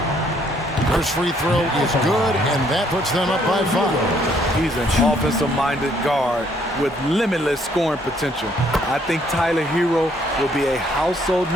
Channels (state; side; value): normal; both; correlation 0.67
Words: First free throw is good, and that puts them up by 5. He's an offensive-minded guard with limitless scoring potential. I think Tyler Hero will be a household